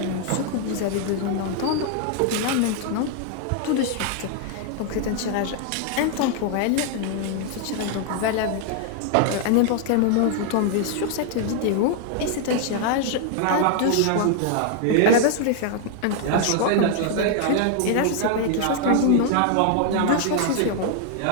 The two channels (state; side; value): different; both; correlation 0.00